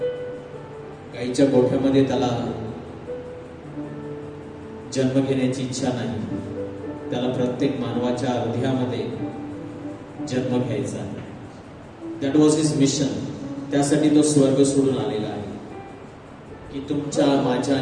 गाईच्या गोठ्यामध्ये त्याला जन्म घेण्याची इच्छा नाही. त्याला प्रत्येक मानवाच्या हृदयामध्ये जन्म घ्यायचा आहे. That was his mission. त्यासाठी तो स्वर्ग सोडून आलेला आहे की तुमच्या, माझ्या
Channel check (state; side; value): identical; both; correlation 1.00